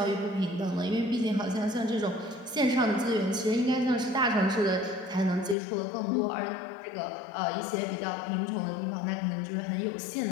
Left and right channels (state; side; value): drops out; right; at 5.6 s